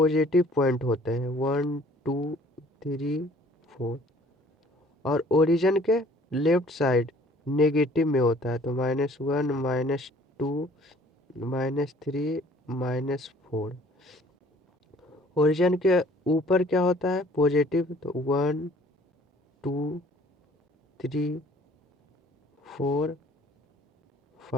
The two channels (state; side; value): normal; both; correlation 0.55